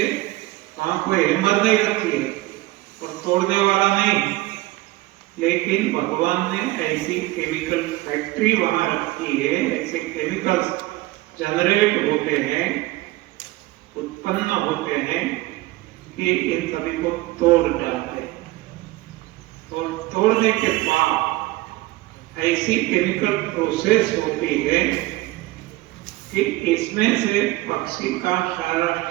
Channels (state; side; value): quieter; left; 19.0 dB